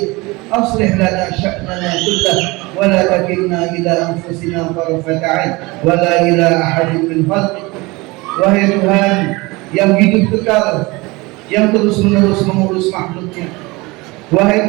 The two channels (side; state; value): left; quieter; 23.5 dB